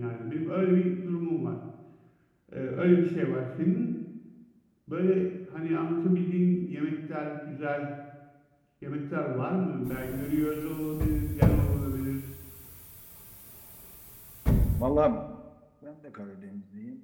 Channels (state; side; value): identical; both; correlation 1.00